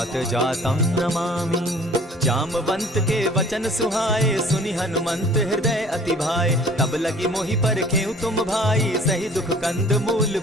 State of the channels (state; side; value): normal; both; correlation 0.50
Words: जातं नमामि। जामवंत के वचन सुहाए, सुनि हनुमंत हृदय अति भाए। तब लगी मोहि परखेउ तुम भाई, सही दुख कंद मूल